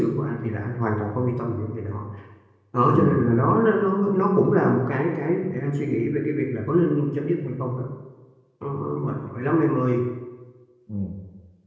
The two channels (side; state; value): both; identical; correlation 1.00